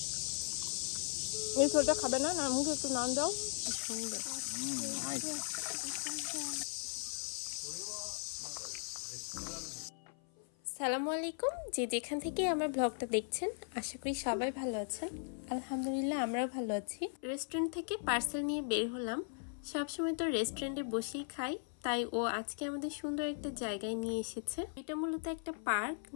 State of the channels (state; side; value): silent; right; 53 dB below the other